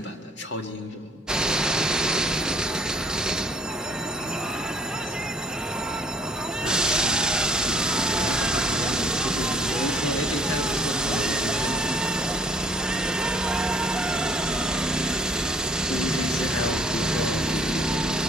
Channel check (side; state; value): both; normal; correlation 0.59